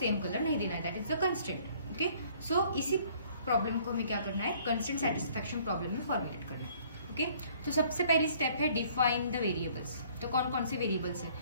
कलर नहीं देना है, that is the constraint. Okay, so इसी प्रॉब्लम को हमें क्या करना है? कंस्ट्रेंट सेटिस्फैक्शन प्रॉब्लम में फॉर्मुलेट करना है. ओके, तो सबसे पहली स्टेप है डिफाइन द वेरिएबल्स. तो कौन कौन से वेरिएबल्स है?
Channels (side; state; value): both; inverted; correlation -0.58